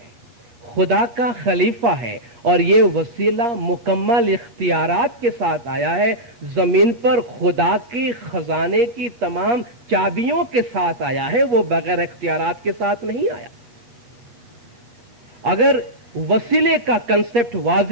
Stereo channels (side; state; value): left; late; 8.5 ms